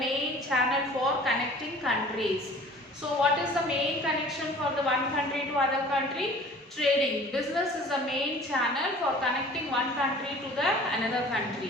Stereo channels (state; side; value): normal; both; correlation 0.47